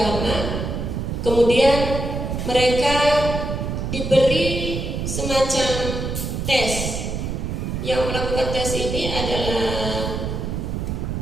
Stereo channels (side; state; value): right; noise; rumble, 3 dB below the sound